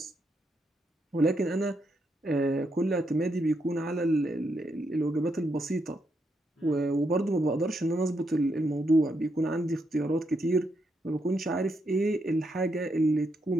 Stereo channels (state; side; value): normal; both; correlation 0.80